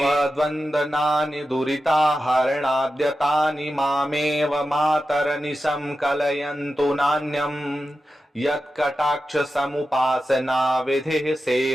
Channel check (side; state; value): both; normal; correlation 0.92